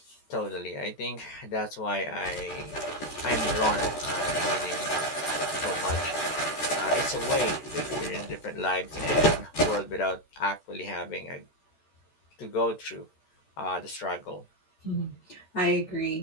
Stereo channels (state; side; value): late; right; 13 ms